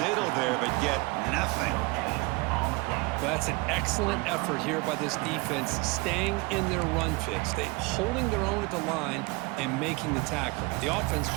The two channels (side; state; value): left; quieter; 25.3 dB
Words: there, but get nothing. Well, that's an excellent effort here by this defense, staying in their run fix. They holding their own at the line and making the tackle. The offense